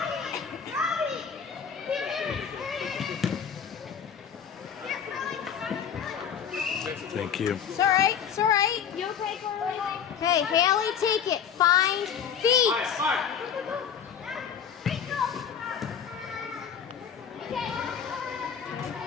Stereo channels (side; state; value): right; quieter; 7.8 dB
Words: Thank you. It's all right. It's all right. You okay, Carly? Okay, Haley, take it. Find feet.